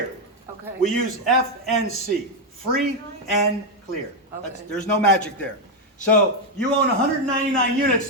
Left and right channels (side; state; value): both; normal; correlation 0.04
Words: Okay. We use FNC, free and clear. There's no magic there. So you own 199 units